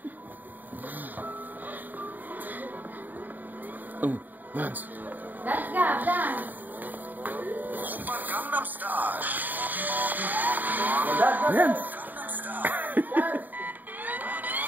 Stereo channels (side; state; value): left; late; 0.086 ms